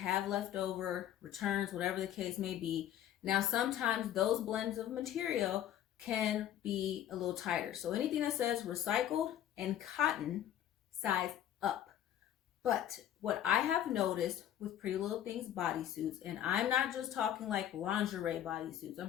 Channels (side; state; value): right; quieter; 11.1 dB